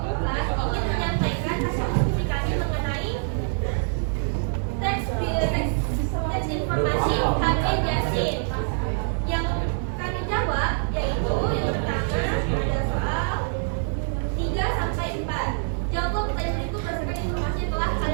4 ingin menyampaikan hasil diskusi kami mengenai teks informasi HB Jasin. Yang kami jawab yaitu yang pertama ada soal 3 sampai 4. Jawab pertanyaan itu berdasarkan informasi yang telah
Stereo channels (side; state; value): left; silent; 62 dB below the other